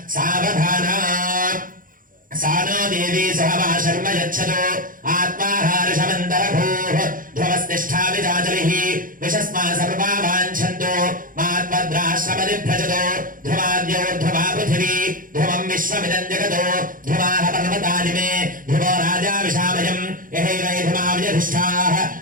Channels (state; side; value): late; left; 0.40 ms